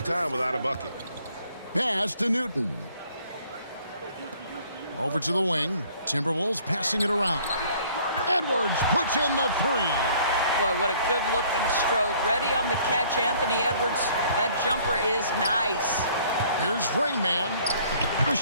time without a bucket. Pass to Newton. Over to the wing. Timberwolves passing it around. Edwards puts in the three. Boy, what a good-looking stroke. Ready on the catch, Anthony Edwards. That jumper is nice. Here's Rain Man. The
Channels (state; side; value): inverted; both; correlation -0.58